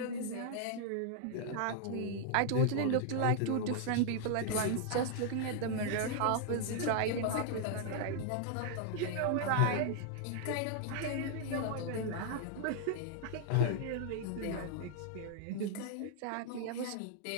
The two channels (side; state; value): both; different; correlation 0.00